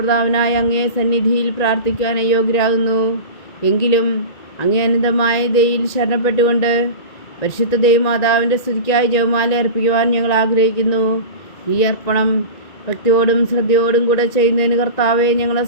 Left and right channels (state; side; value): late; right; 1.9 ms